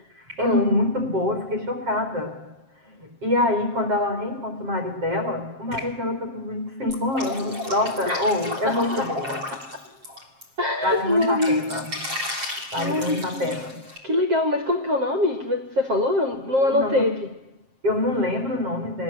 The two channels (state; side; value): late; left; 7.5 ms